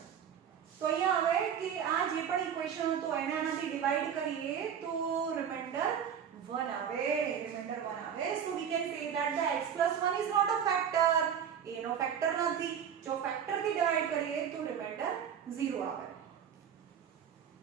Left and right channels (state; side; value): quieter; left; 8.2 dB